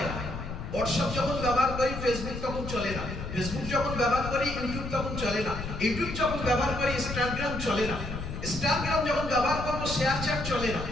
না। হোয়াটসঅ্যাপ যখন ব্যবহার করি, ফেসবুক তখন চলে না। ফেসবুক যখন ব্যবহার করি, ইউটিউব তখন চলে না। ইউটিউব যখন ব্যবহার করি, ইনস্টাগ্রাম চলে না। ইনস্টাগ্রাম যখন ব্যবহার করব, শেয়ার চ্যাট চলে না।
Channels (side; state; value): left; noise; rumble, 7 dB below the sound